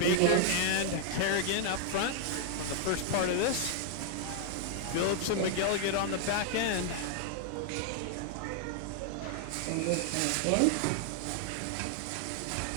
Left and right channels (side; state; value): both; different; correlation 0.00